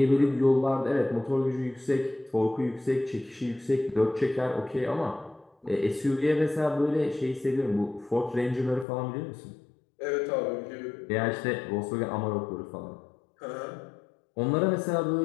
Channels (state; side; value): drops out; right; at 8.8 s